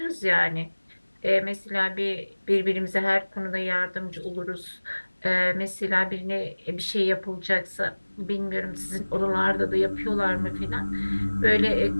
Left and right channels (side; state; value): both; inverted; correlation -1.00